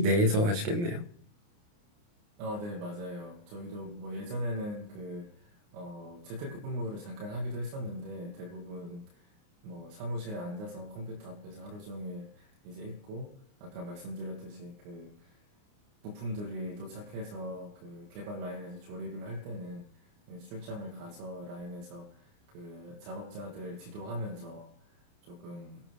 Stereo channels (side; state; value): left; late; 29 ms